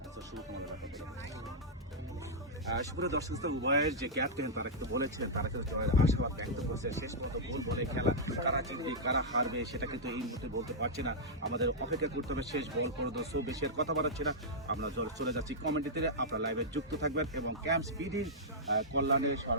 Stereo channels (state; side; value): normal; both; correlation -0.09